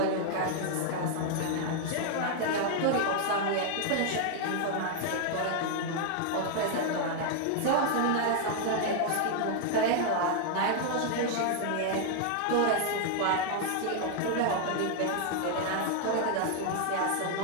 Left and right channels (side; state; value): both; different; correlation 0.00